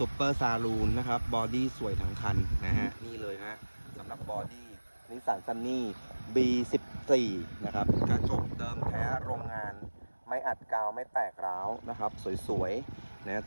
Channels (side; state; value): both; inverted; correlation -1.00